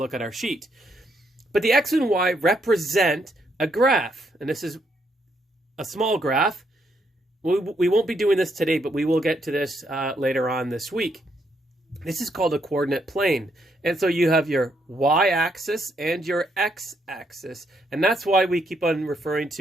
at our sheet. But the x and y represent a graph, and this is a small graph. We won't be doing this today, but we will get to this later on this week. This is called a coordinate plane. And so you have your y-axis and your x-axis, and that's why we keep on referring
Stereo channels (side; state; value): both; normal; correlation 0.75